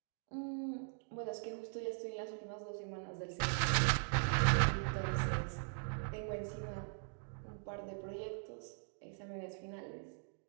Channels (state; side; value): silent; left; digital silence